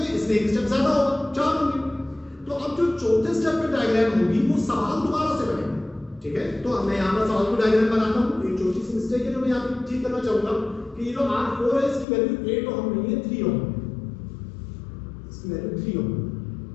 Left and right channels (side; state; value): right; drops out; at 12.1 s